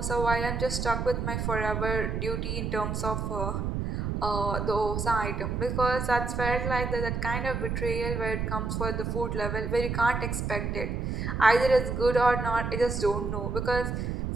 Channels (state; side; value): noise; right; rumble, 2 dB below the sound